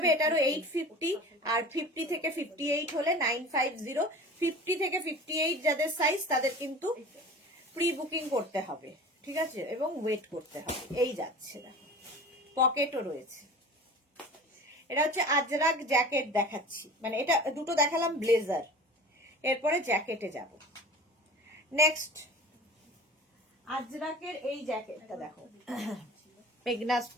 এটারও 850, আর 50 থেকে 58 হলে 950। 50 থেকে 58 যাদের সাইজ তাদের কিন্তু প্রি বুকিং করতে হবে, ঠিক আছে, এবং ওয়েট করতে হবে। এই যাচ্ছে, দেখো পকেটও রয়েছে। এটা হচ্ছে আজরাক জ্যাকেট দেখাচ্ছি, মানে এটা দুটো দেখালাম ব্লেজার, এরপরে জ্যাকেটে যাব। নেক্সট আজরাকের এই জ্যাকেটটা দেখো, মেঘনা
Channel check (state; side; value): normal; both; correlation 0.39